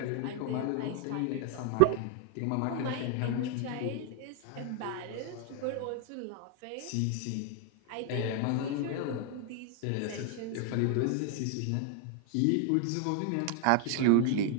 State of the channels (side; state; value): both; different; correlation 0.00